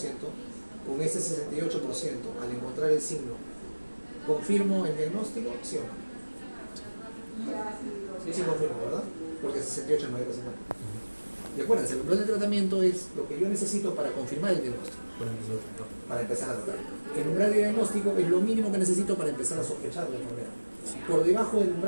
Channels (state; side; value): inverted; both; correlation -1.00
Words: con ese 68%, al encontrar el signo, ¿confirmo el diagnóstico? ¿Sí o no? Sí, confirmo, ¿verdad? Porque 68 no hay que hacer. Y acuérdense, el umbral de tratamiento es lo que yo necesito para confirmar el diagnóstico, para empezar a tratar. El umbral de diagnóstico es lo mínimo que necesito para empezar a sospechar la enfermedad. Por debajo del